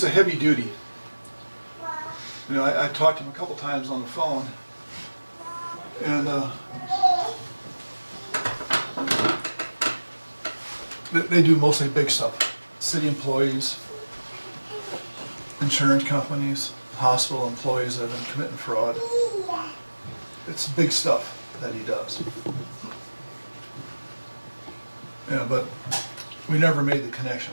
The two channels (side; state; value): both; inverted; correlation -1.00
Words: a heavy duty. You know, I talked to him a couple times on the phone, and they do mostly big stuff. City employees, insurance companies, hospital employees that have been committing fraud. It's big stuff that he does. Yeah, but we never made the